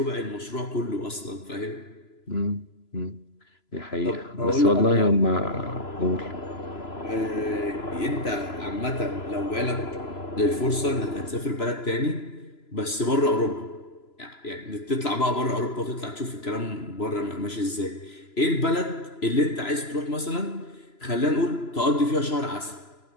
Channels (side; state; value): right; late; 3.0 ms